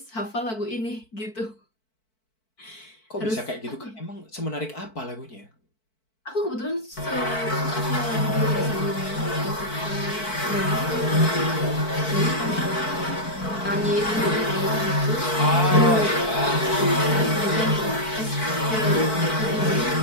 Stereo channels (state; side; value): late; right; 4.5 ms